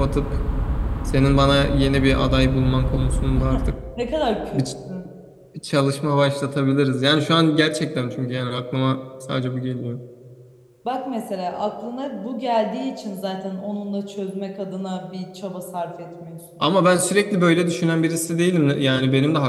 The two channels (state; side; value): identical; both; correlation 1.00